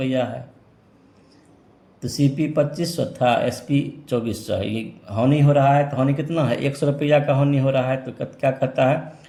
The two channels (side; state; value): both; identical; correlation 1.00